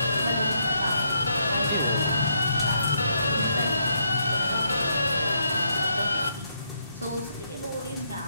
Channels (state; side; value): inverted; both; correlation -0.75